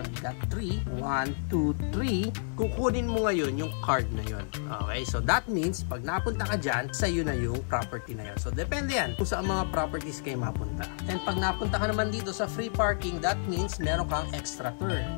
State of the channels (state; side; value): silent; right; digital silence